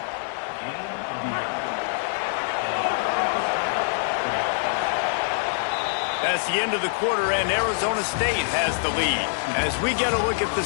That's the end of the quarter, and Arizona State has the lead. As we get a look at the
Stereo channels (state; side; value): silent; right; 62 dB below the other